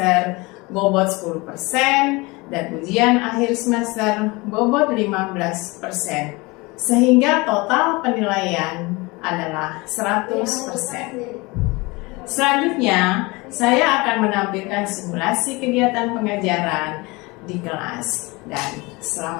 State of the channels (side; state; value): right; quieter; 24.5 dB